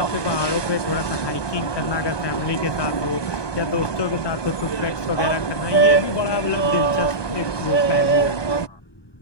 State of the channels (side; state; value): right; late; 1.2 ms